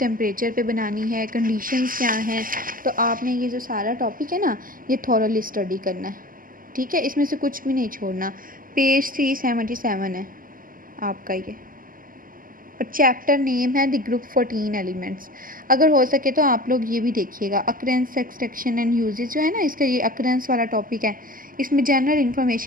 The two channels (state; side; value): late; left; 0.41 ms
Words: पे बनानी है, कंडीशंस क्या हैं। तो आपने ये जो सारा टॉपिक है ना, ये थॉरली स्टडी करना है, ठीक है, इसमें से कुछ भी नहीं छोड़ना। पेज 377 है आपका ये, और चैप्टर नेम है द ग्रुप 14 एलिमेंट्स। अगर हो सके तो आप लोग ये भी देखिएगा, अकरेंस, एक्सट्रैक्शन एंड यूजेज जो है ना, इसका ये अकरेंस वाला टॉपिक है, इसमें जनरल